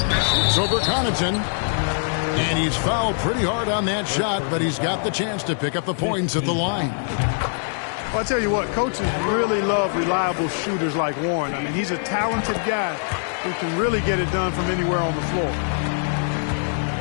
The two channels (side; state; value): right; silent; digital silence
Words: It's over Connaughton. And he's fouled pretty hard on that shot, but he's got the chance to pick up the points at the line. Well, I'll tell you what, coaches really love reliable shooters like Warren. I mean, he's a talented guy who can really get it done from anywhere on the floor.